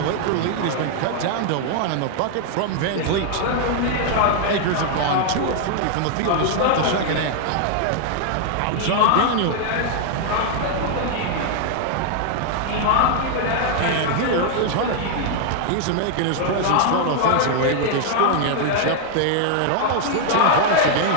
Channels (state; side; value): different; both; correlation 0.00